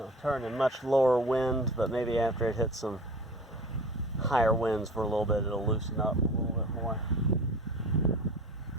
turn in much lower wind, but maybe after it hits some higher winds for a little bit, it'll loosen up a little bit more.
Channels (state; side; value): normal; both; correlation 0.40